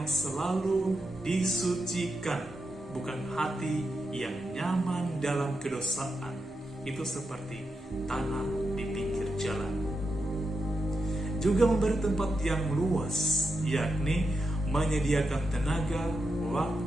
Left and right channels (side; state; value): both; normal; correlation 0.86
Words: selalu disucikan, bukan hati yang nyaman dalam kedosaan. Itu seperti tanah di pinggir jalan. Juga memberi tempat yang luas, yakni menyediakan tenaga,